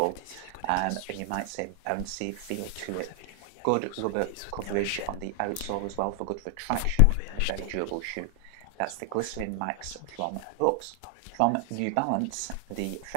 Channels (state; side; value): different; both; correlation 0.00